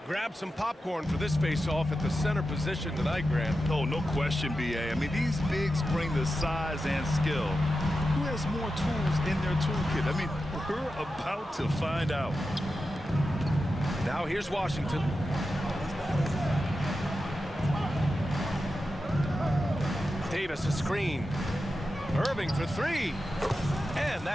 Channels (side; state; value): both; normal; correlation 0.91